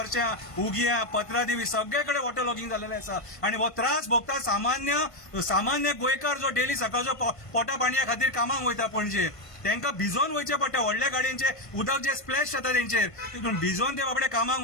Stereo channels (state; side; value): late; right; 1.5 ms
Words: उगिया, पत्रादेवी सगळे कडेन वॉटर लॉगिंग जाल्लेलें आसा. आनी हो त्रास भोगता सामान्य गोंयकार जो डेली सकाळचो पोटा पाणया खातीर कामाक वयता पणजे. तांकां भिजोवन वयचे पडटा. व्हडल्या गाडयांचे उदक जे स्प्लॅश जाता तेंचेर, तितून भिजोवन ते बाबडे कामाक